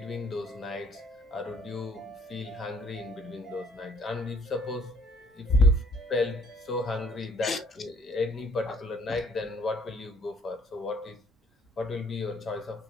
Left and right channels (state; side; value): normal; both; correlation 0.61